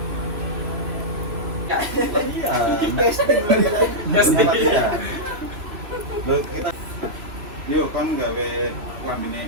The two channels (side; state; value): left; late; 3.2 ms